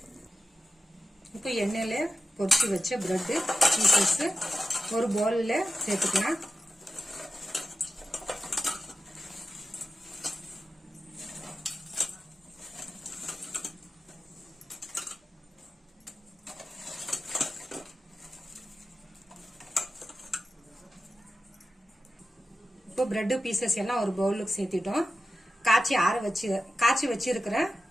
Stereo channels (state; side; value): normal; both; correlation 0.92